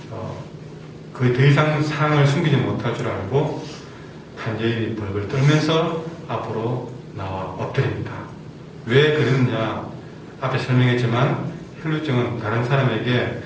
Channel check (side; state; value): both; identical; correlation 1.00